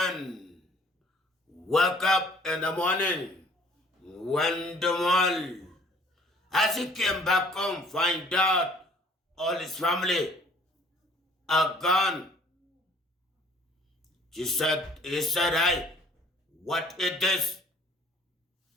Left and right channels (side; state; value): both; normal; correlation 0.55